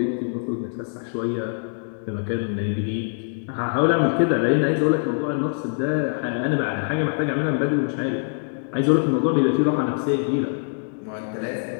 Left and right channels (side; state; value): right; silent; 63 dB below the other